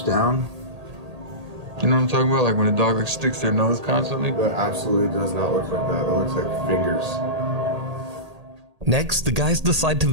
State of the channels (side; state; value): left; late; 1.8 ms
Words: down. You know what I'm talking about? Like when a dog like sticks their nose constantly? That absolutely does not look like that. That looks like fingers. Next, the guys decide to